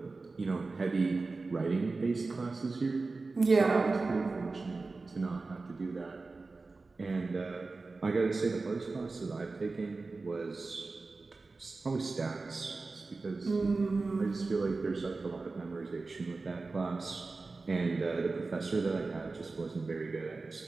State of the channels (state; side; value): quieter; left; 3.7 dB